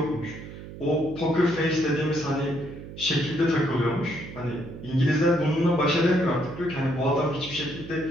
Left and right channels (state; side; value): noise; right; hum, 13 dB below the sound